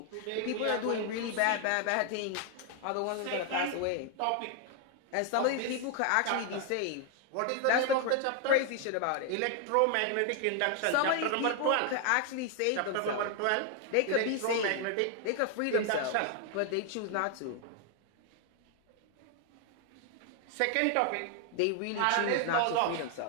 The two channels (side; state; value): both; different; correlation 0.00